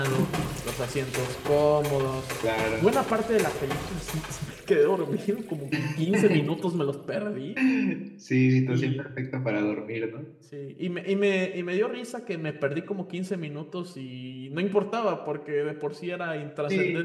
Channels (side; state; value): both; identical; correlation 1.00